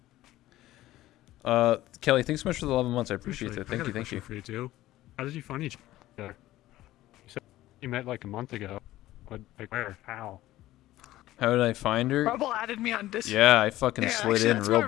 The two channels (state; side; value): quieter; right; 15.6 dB